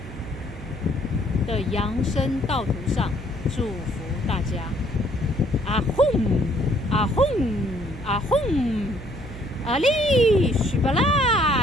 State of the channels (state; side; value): noise; right; hum, 14 dB below the sound